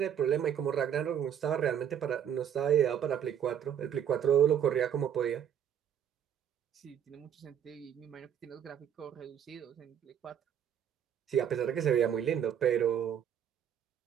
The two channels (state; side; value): quieter; left; 9.1 dB